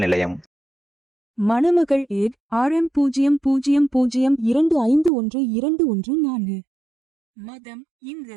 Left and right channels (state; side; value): drops out; left; at 5.1 s